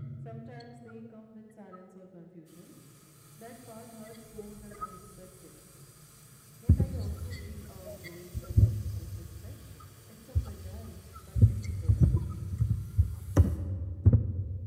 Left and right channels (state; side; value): identical; both; correlation 1.00